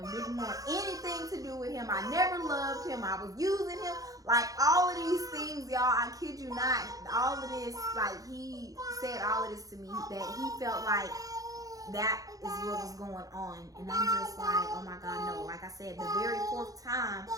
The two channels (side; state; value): left; late; 0.17 ms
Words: Didn't want anything to do with him. I never loved him. I was using him. Like, all of these things, y'all, I kid you not, all of this, like, he said all of this to me, that he felt like that is what was going on. And I'm just like, oh my God, no. Like I said, the very fourth time,